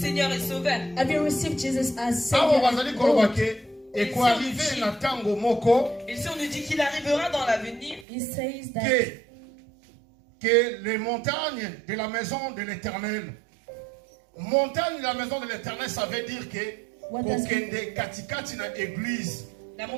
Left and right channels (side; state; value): left; drops out; at 8.1 s